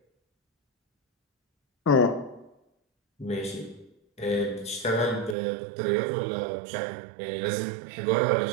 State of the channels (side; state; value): left; drops out; at 5.4 s